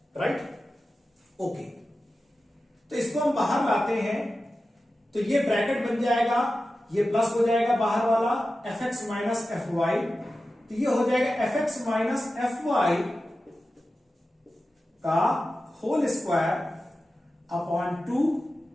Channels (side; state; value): both; normal; correlation 0.93